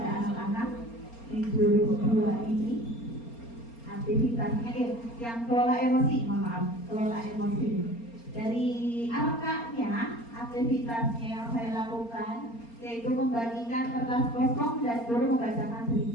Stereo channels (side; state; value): right; late; 4.3 ms